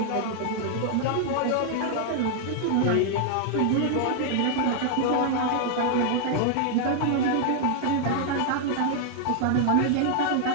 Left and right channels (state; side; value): different; both; correlation -0.01